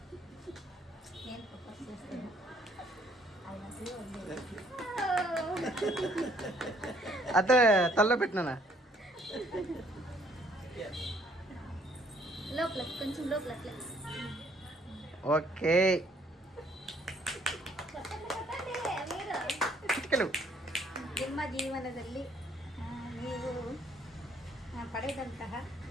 అదే తల్లో పెట్టినా లోపల కొంచెం లోపల ఓకే ನಿಮ್ಮ ಜೀವನದಲ್ಲಿ ನೀವು ಪಡೆದಂತಹ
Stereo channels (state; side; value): normal; both; correlation 0.64